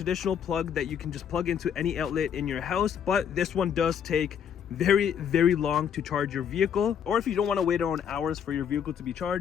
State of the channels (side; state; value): right; quieter; 8.1 dB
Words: plug that you can just plug into any outlet in your house, but this one does take very long to charge your vehicle. Or if you don't want to wait on hours for your vehicle to be